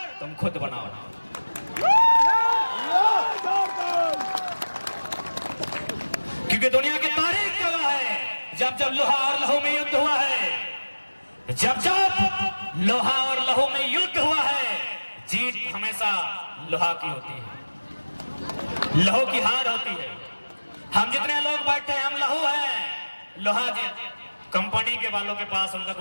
तुम खुद बनाओ। क्योंकि दुनिया की तारीख गवाह है, जब जब लोहा और लहू में युद्ध हुआ है, जब जब लोहा और लहू में युद्ध हुआ है, जीत हमेशा लोहा की होती है, लहू की हार होती है। हम जितने लोग बैठे हैं, हम लहू हैं, लोहा जी कंपनी के वालों के पास, उनका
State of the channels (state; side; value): inverted; both; correlation -1.00